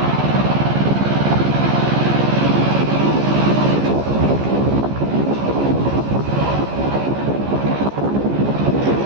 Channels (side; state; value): left; late; 15 ms